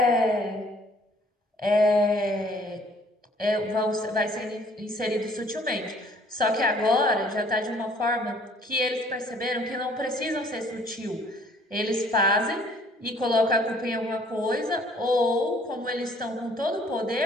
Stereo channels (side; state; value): both; normal; correlation 0.58